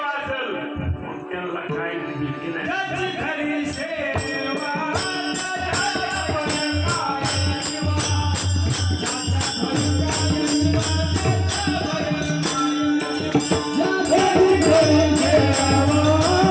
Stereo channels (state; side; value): identical; both; correlation 1.00